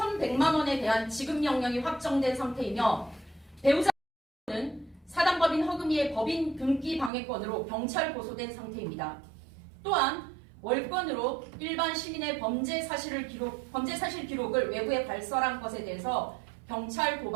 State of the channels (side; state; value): left; drops out; at 7.1 s